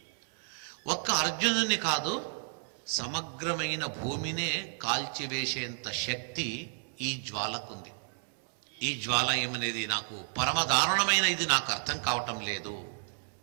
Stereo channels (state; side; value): silent; left; 57 dB below the other